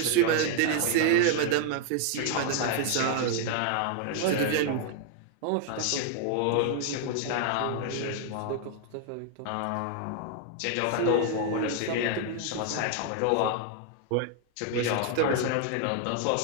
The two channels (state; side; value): different; both; correlation 0.00